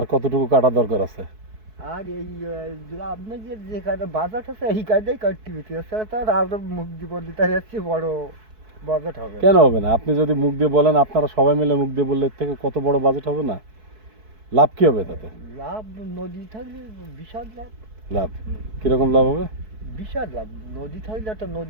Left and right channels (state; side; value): late; left; 4.6 ms